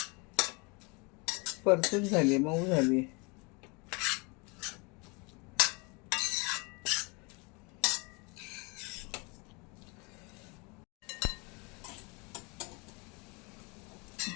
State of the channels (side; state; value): right; quieter; 29.6 dB